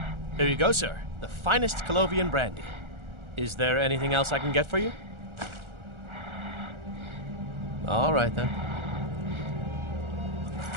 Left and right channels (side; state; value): left; late; 1.4 ms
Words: Here you go, sir. The finest Colovian brandy. Is there anything else I can get for you? All right, then.